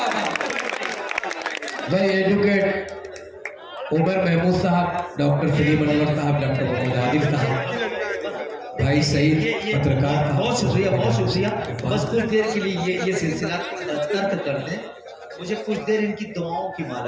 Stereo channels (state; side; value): identical; both; correlation 1.00